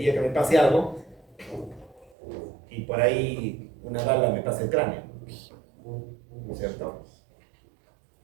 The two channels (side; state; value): left; drops out; at 2.1 s